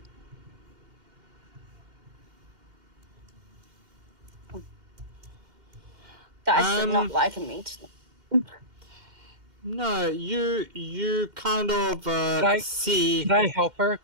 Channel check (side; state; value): left; late; 2.1 ms